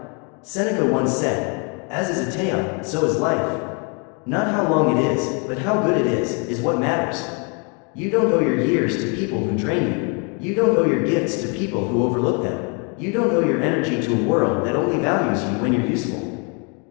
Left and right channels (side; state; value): right; quieter; 35.6 dB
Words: Seneca once said, "As is a tale, so is life." Not how long it is, but how good it is what matters. You don't owe your years to people who drain you. You don't owe your gifts to people who overlook them. You don't owe your energy to a world that only values you when you're useful.